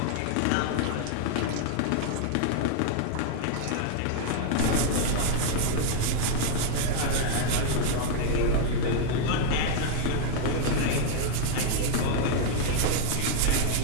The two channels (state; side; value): different; both; correlation -0.01